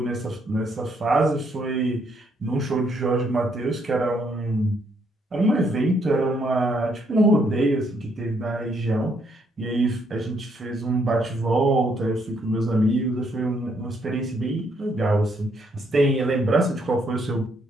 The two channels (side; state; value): both; normal; correlation 0.72